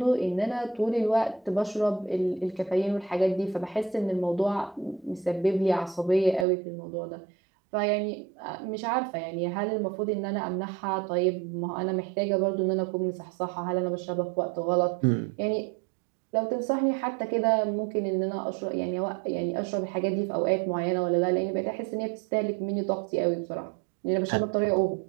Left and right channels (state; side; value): drops out; left; at 6.5 s